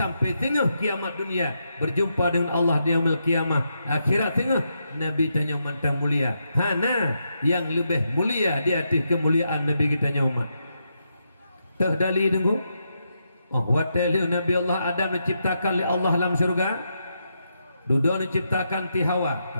tengah kiamat dunia berjumpa dengan Allah di yaumil kiamah akhirat tengah Nabi tanya mantang mulia hana yang lebih mulia di atas kemuliaan Nabi kitanya umat terdali tunggu watali Nabi Allah Adam diciptakan oleh Allah dalam surga dudu diciptakan ti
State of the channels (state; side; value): inverted; both; correlation -0.83